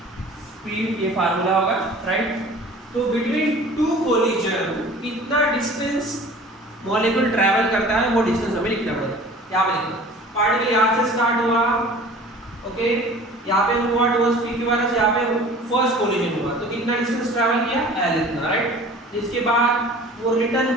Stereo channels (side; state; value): both; normal; correlation 0.45